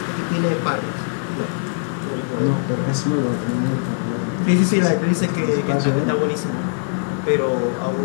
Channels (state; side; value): silent; right; digital silence